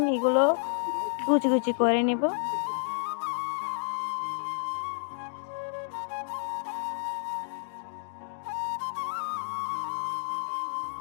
এগুলো কুচি কুচি করে নিব।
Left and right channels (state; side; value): silent; right; digital silence